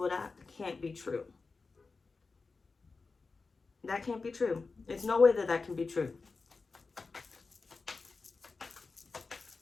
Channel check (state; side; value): quieter; right; 4.2 dB